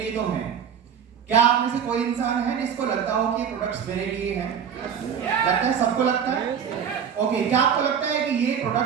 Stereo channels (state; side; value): quieter; left; 7.8 dB